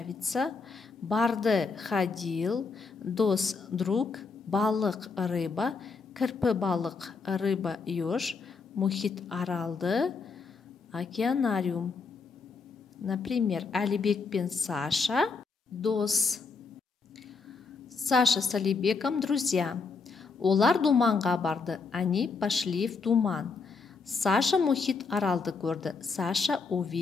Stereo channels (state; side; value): quieter; right; 4.6 dB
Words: Барды, ходил. Дос, друг. Балық, рыба. Кірпі балық, рыба, еж. Мұхит Аралды, океанариум. Например, Әлібек пен Саша дос. Саша с Әлібеком друзья. Олар думанға барды. Они пошли в думан. Саша Мұхит Аралды көрді. Саша